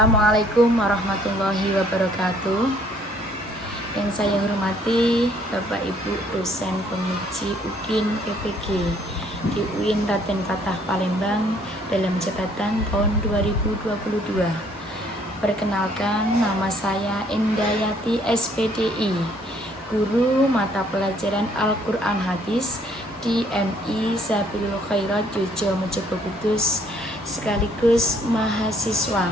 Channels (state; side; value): normal; both; correlation 0.63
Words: warahmatullahi wabarakatuh. Yang saya hormati Bapak Ibu dosen penguji UKIN PPG di UIN Raden Fatah Palembang dalam jabatan tahun 2022. Perkenalkan, nama saya Indayati SPDI, guru mata pelajaran Al-Quran Hadis di MI Sabilul Khairat Jojo Mojogo Kudus, sekaligus mahasiswa